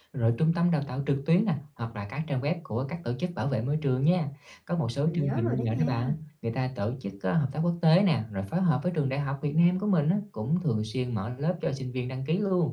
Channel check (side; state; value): both; identical; correlation 1.00